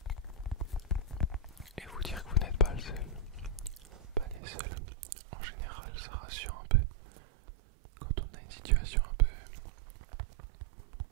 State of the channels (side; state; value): left; drops out; at 4.4 s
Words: et vous dire que vous n'êtes pas le seul, pas les seuls. En général, ça rassure un peu quand on a une situation un peu